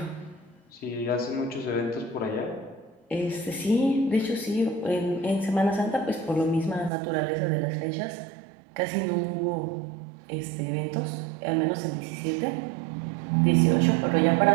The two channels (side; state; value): left; drops out; at 6.9 s